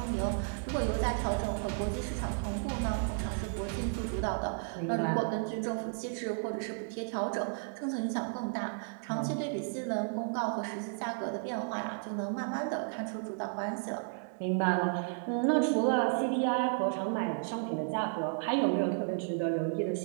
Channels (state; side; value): silent; left; 56 dB below the other